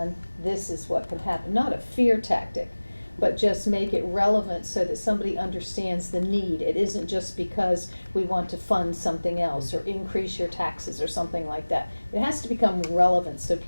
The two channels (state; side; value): inverted; both; correlation -1.00